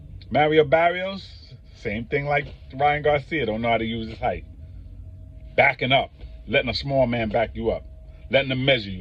Mario Barrios, same thing like Ryan Garcia. Don't know how to use his height. Backing up. letting a small man back you up, letting them measure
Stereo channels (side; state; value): both; identical; correlation 1.00